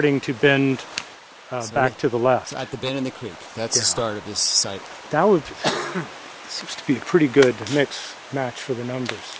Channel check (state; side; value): identical; both; correlation 1.00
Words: to bend back to the left. So at the bend in the creek, that's the start of this site. That would seems to be a pretty good match for the numbers.